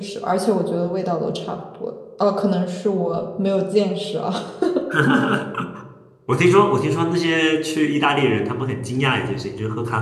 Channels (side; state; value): both; identical; correlation 1.00